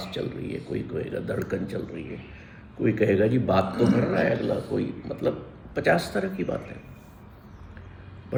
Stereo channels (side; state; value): both; identical; correlation 1.00